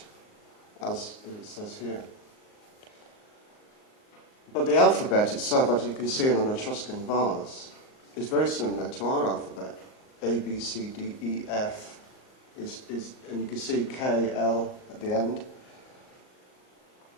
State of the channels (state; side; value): late; right; 38 ms